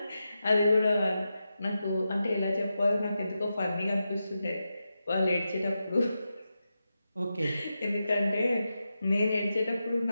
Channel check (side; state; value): both; inverted; correlation -0.89